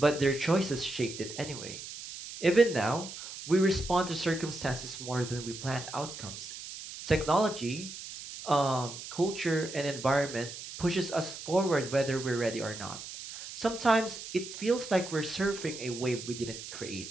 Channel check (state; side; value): noise; right; hiss, 11 dB below the sound